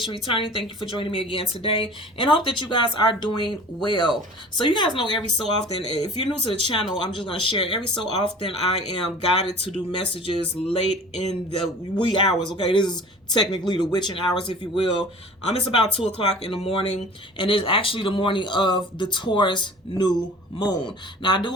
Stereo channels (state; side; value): normal; both; correlation 0.43